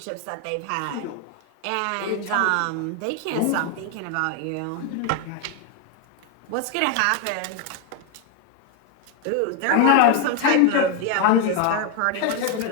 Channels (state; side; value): different; both; correlation 0.01